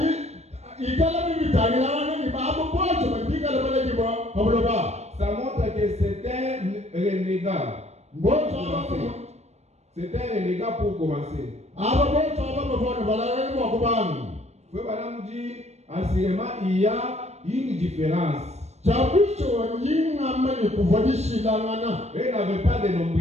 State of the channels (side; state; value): left; late; 0.32 ms